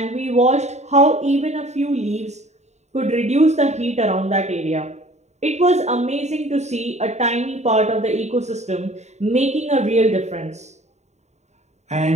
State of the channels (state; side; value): late; left; 0.32 ms